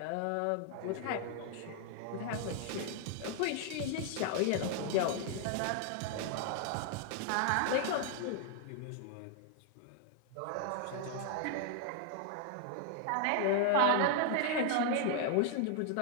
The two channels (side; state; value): both; different; correlation 0.00